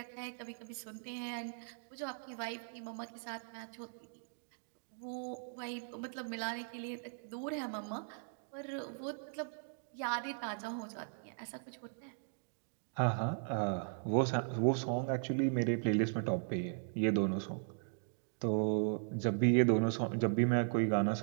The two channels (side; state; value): left; silent; digital silence